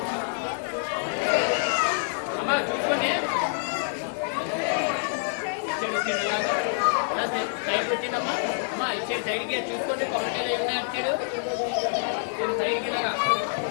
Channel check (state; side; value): silent; right; 60 dB below the other